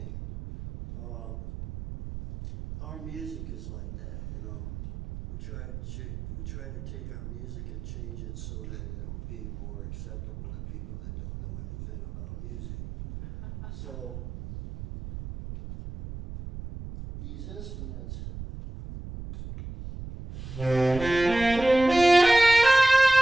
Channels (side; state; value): right; noise; rumble, 11 dB below the sound